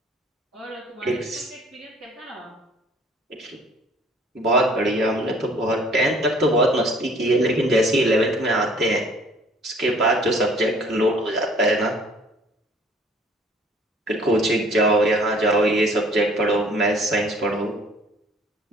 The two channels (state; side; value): normal; both; correlation 0.54